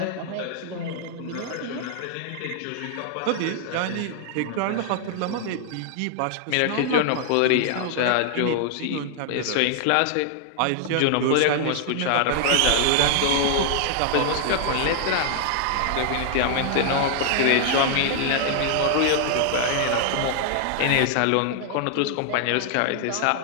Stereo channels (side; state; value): both; different; correlation 0.00